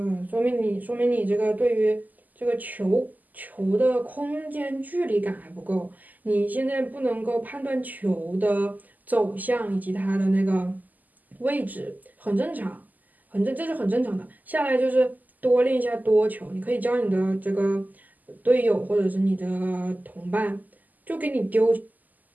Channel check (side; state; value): left; late; 0.082 ms